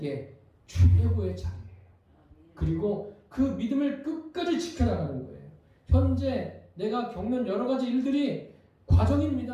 최고의 자리예요. 그리고 그 믿음을 끝까지 지켜나가는 거예요. 현재 내가 겪는 여러 가지 일들이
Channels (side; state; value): both; identical; correlation 1.00